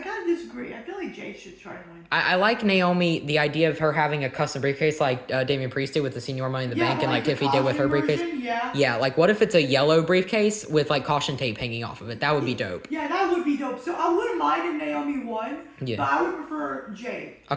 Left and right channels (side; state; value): both; identical; correlation 1.00